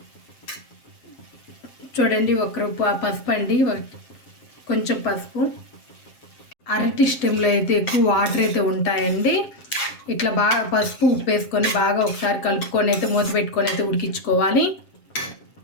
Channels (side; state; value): right; late; 7.6 ms